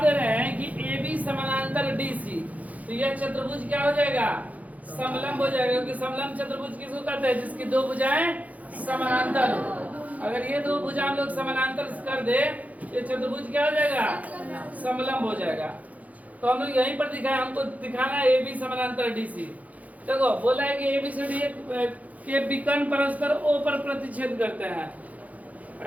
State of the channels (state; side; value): late; left; 0.073 ms